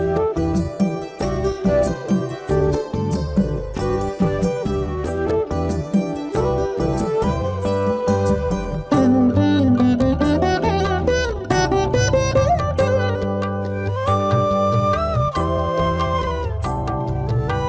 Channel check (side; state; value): both; identical; correlation 1.00